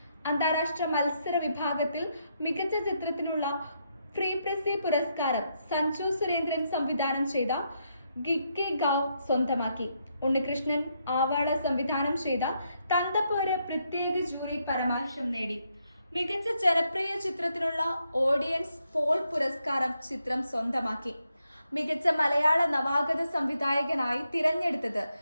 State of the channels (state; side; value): inverted; both; correlation -0.79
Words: അന്താരാഷ്ട്ര മത്സര വിഭാഗത്തിൽ മികച്ച ചിത്രത്തിനുള്ള ഫ്രീ പ്രസി പുരസ്കാരം സഞ്ജു സുരേന്ദ്രൻ സംവിധാനം ചെയ്ത ഗിക്കെ ഗാവ് സ്വന്തമാക്കി. ഉണ്ണികൃഷ്ണൻ ആവാള സംവിധാനം ചെയ്ത തന്തപ്പോര് പ്രത്യേക ജൂറി പരാമർശം നേടി. മികച്ച ജനപ്രിയ ചിത്രത്തിനുള്ള ഓഡിയൻസ് പോൾ പുരസ്കാരം ചിത്രം സ്വന്തമാക്കി. മികച്ച മലയാള നവാഗത സംവിധായകനായി തിരഞ്ഞെടുത്തത്